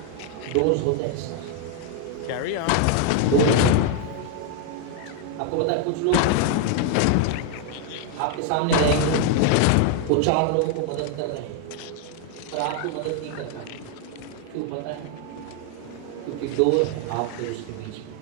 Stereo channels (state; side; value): different; both; correlation 0.01